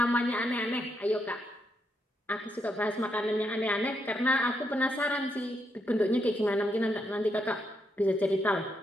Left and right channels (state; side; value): normal; both; correlation 0.79